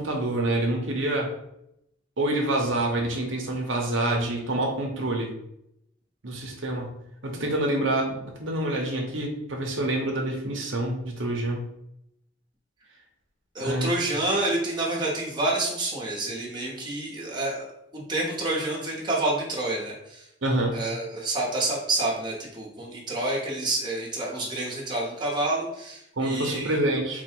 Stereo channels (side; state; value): both; normal; correlation 0.20